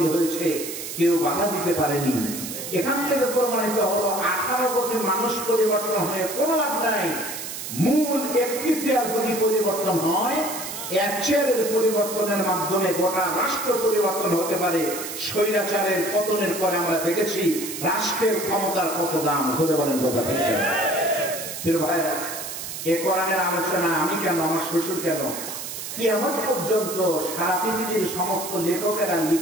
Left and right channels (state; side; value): noise; right; hiss, 8 dB below the sound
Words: হয়েছে, কেউ বাধা দিতে পারেনি। এখান থেকে প্রমাণিত হলো 18 কোটি মানুষ পরিবর্তন হয়ে কোনো লাভ নাই। মূল একটি চেয়ার যদি পরিবর্তন হয়, এক চেয়ারের পরিবর্তনের মাধ্যমে গোটা রাষ্ট্র পরিবর্তন হতে পারে। স্বৈরাচারের পতনের পরে আমরা দেখেছি রাষ্ট্রের ক্ষমতার কত দাম। ধরে বলেন কথা ঠিক? প্রিয় ভাইরা, এ কোরআনের আলোচনা আমি কেন, আমার শ্বশুর কেন, কিয়ামত পর্যন্ত সারা পৃথিবীর সমস্ত লেখকেরা